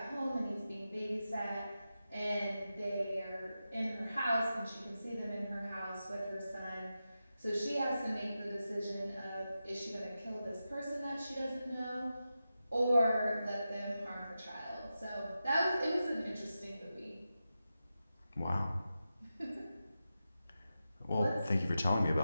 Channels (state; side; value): inverted; both; correlation -0.91